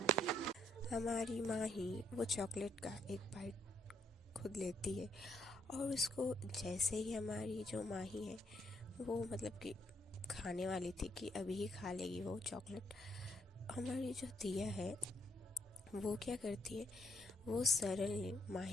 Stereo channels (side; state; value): both; normal; correlation 0.73